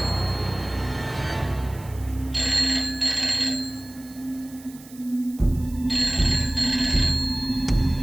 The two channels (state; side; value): noise; right; hiss, 21 dB below the sound